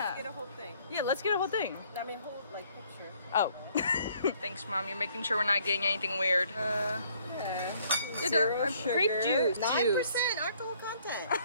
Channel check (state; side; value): inverted; both; correlation -0.63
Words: Get a whole thing. Yeah, let's get a whole thing. I mean, whole like picture. Oh. Thanks, Mom. You're making sure we're not getting anything weird. Yeah. Zero sugar. Grape juice. 9% alcohol content.